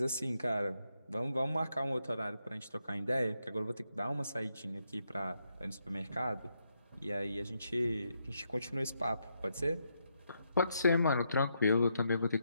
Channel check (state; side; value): inverted; both; correlation -0.80